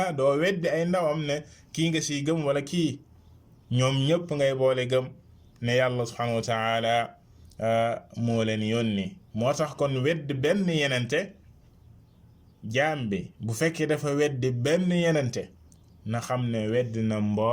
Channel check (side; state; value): both; identical; correlation 1.00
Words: doo weddi ay ndawam ne kii nga siy gëm wala kii ñoom ñëpp ngay boole gëm ne yàlla subhanahu wa ta'ala moo leen yónni moo tax kon weddi benn yenente jaam bi bu fekkee dafa weddi benn yenente na xam ne weddi na